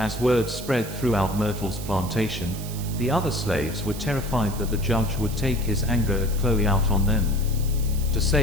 word spread throughout Myrtle's plantation, the other slaves were terrified that the judge would take his anger at Chloe out on them. To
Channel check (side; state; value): right; noise; hiss, 13 dB below the sound